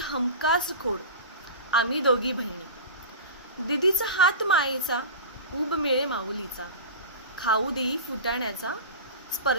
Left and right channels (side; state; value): both; inverted; correlation -0.30